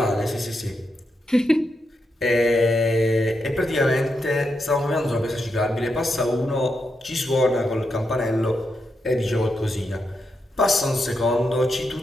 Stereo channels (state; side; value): normal; both; correlation 0.84